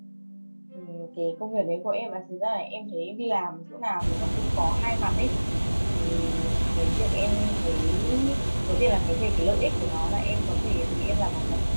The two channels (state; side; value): inverted; both; correlation -1.00